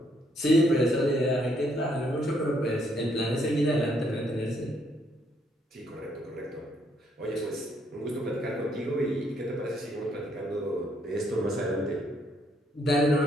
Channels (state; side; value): normal; both; correlation 0.71